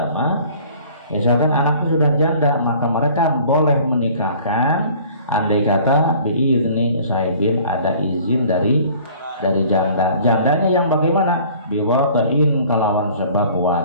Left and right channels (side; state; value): both; inverted; correlation -0.51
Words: mah, misalkan anaknya sudah janda, maka mereka boleh menikahkan andai kata biirni sahibin ada izin dari janda. Jandanya yang bagaimana? Biwatain kelawan sebab